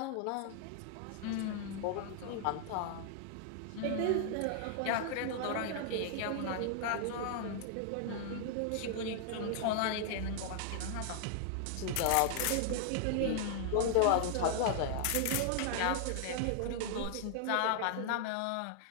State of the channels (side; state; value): both; different; correlation -0.01